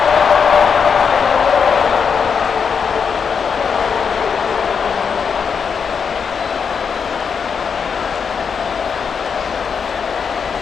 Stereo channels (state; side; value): quieter; right; 6.4 dB